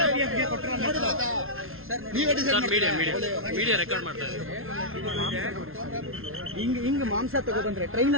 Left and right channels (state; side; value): late; left; 0.61 ms